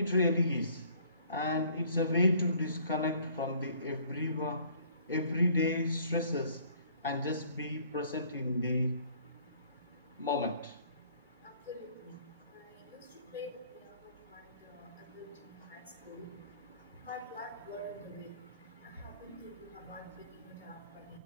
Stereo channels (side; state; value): both; inverted; correlation -0.57